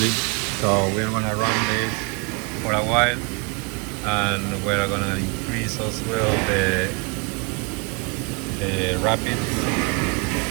So we're gonna run this for a while, and we're gonna increase as well the rapid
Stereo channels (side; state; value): left; quieter; 31.5 dB